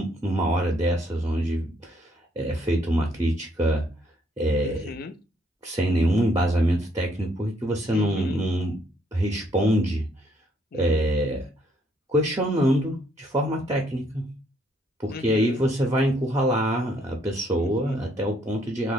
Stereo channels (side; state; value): both; normal; correlation 0.68